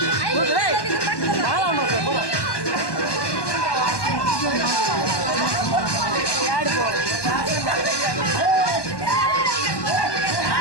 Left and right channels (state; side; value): late; right; 1.1 ms